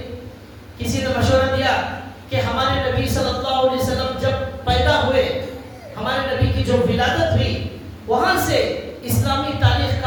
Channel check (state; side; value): identical; both; correlation 1.00